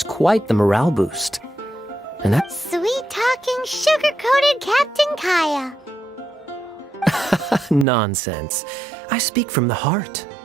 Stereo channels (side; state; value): left; drops out; at 7.9 s